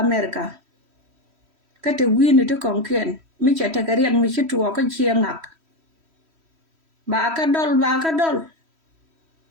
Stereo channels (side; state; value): left; late; 3.1 ms